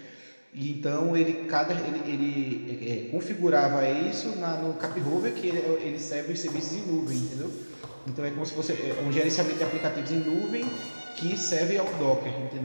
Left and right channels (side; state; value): both; inverted; correlation -1.00